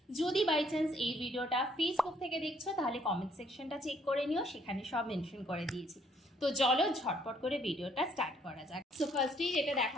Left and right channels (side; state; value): both; normal; correlation 0.66